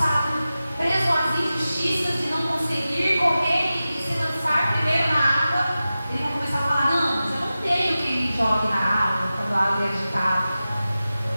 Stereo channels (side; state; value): both; inverted; correlation -0.94